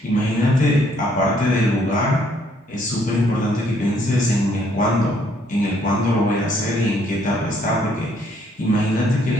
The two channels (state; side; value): normal; both; correlation 0.67